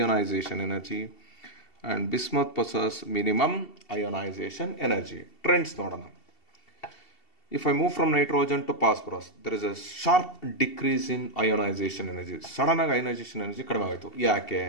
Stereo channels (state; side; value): late; right; 2.7 ms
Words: energy and bismuth possesses minimum ionization energy. Trends nodana. If I move from nitrogen to phosphorus, there is a sharp decrease in ionization energy. Sudden ionization energy kadime ayitu. Yake?